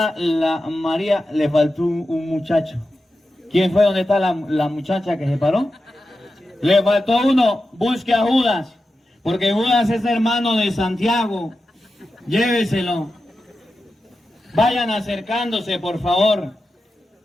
la María? Le faltó un muchacho. ¿Quién fue? ¿Dónde está la muchacha que se paró? Le faltó uno. Busque a Judas, porque Judas es hermano de Santiago. Lléveselo. Vayan acercándose, por favor.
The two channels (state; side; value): normal; both; correlation 0.91